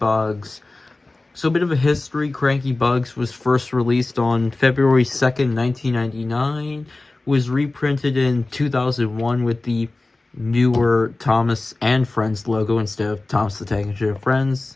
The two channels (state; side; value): quieter; right; 3.1 dB